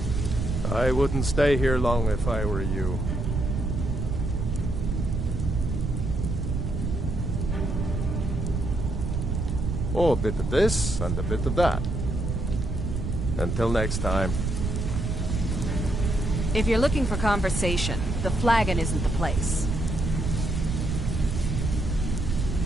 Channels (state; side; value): noise; right; rumble, 1 dB below the sound